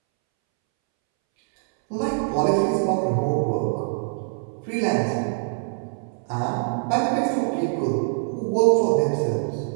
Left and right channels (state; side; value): silent; left; 63 dB below the other